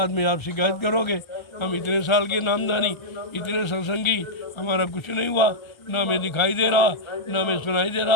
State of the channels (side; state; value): right; late; 1.3 ms